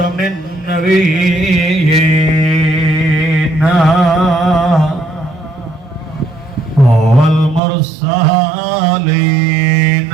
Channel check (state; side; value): drops out; left; at 7.6 s